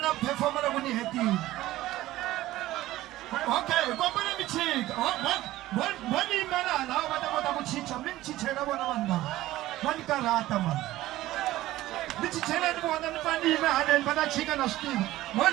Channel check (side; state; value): left; quieter; 16.0 dB